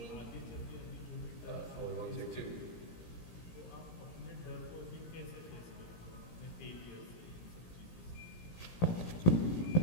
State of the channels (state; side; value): late; right; 17 ms